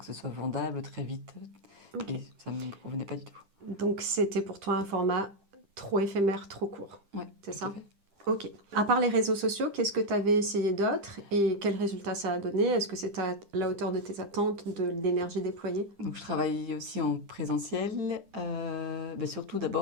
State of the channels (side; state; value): left; late; 10 ms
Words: ce soit vendable très vite. Ok, Et ça ne me convenait pas du tout. donc c'était pour toi un format trop éphémère, trop court, Ouais, c'est tout à ça? fait. Ok. À part les réseaux sociaux, qu'est-ce que tu avais essayé d'autre et quels résultats ça a donné? Est-ce que c'est à la hauteur de tes attentes, de l'énergie déployée? Donc, je travaille aussi en présentiel. Surtout